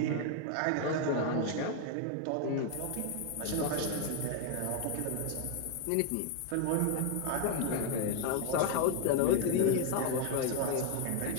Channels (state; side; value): different; both; correlation 0.01